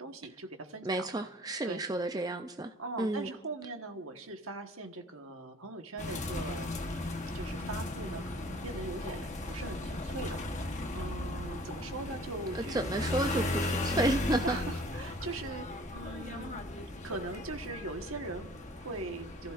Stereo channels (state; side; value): normal; both; correlation 0.52